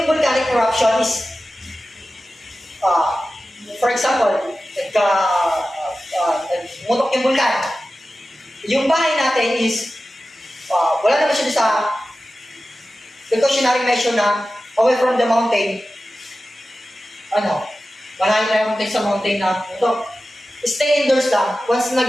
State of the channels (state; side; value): normal; both; correlation 0.94